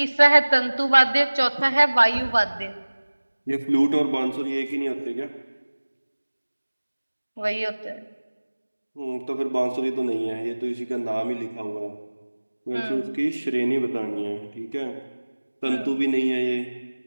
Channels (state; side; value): inverted; both; correlation -1.00